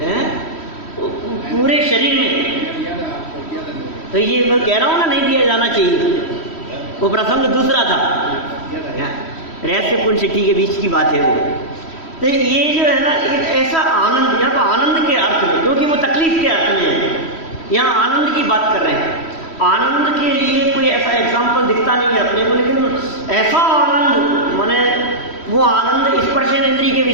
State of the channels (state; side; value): late; right; 3.1 ms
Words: पूरे शरीर में। तो ये मैं कह रहा हूँ ना, नहीं दिया जाना चाहिए, वो प्रसंग दूसरा था, रहस्य पुण्य सिद्धि के बीच की बात है वो। तो ये जो है ना, एक ऐसा आनंद, यहाँ पर आनंद के अर्थ में, क्योंकि वो तकलीफ के अर्थ में है, यहाँ आनंद की बात कर रहे हैं। आनंद के लिए कोई ऐसा एग्जाम्पल दिखता नहीं है अपने को, लेकिन ऐसा आनंद माने वो आनंद स्पर्शेंद्रिय के